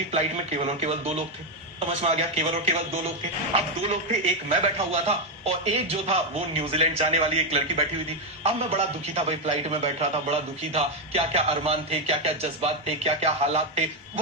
फ्लाइट में केवल और केवल 2 लोग थे। समझ में आ गया, केवल और केवल 2 लोग थे। अब 2 लोग थे, एक मैं बैठा हुआ था और एक जो था वो न्यूजीलैंड जाने वाली एक लड़की बैठी हुई थी। अब मैं बड़ा दुखी था भाई, फ्लाइट में बैठ रहा था, बड़ा दुखी था। क्या क्या अरमान थे, क्या क्या जज्बात थे, क्या क्या हालात थे,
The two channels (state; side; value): normal; both; correlation 0.06